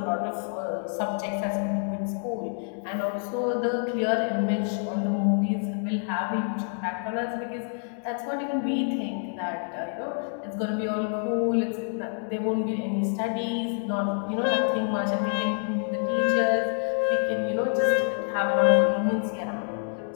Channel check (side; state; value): right; silent; 58 dB below the other